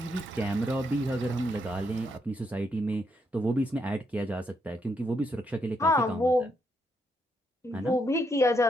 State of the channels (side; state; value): both; normal; correlation 0.78